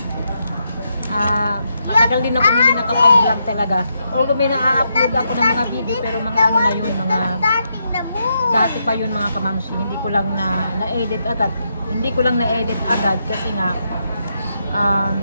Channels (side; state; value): both; inverted; correlation -0.81